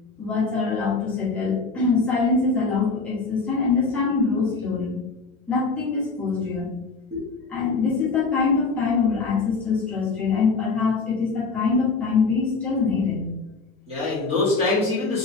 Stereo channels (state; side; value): quieter; right; 4.2 dB